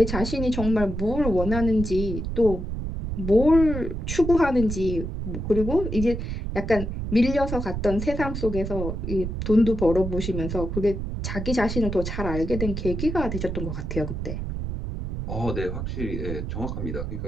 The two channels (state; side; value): noise; right; rumble, 4 dB below the sound